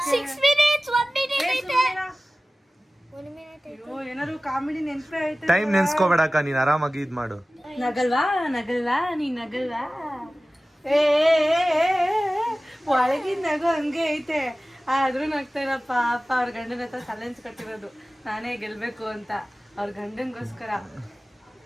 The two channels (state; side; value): normal; both; correlation 0.97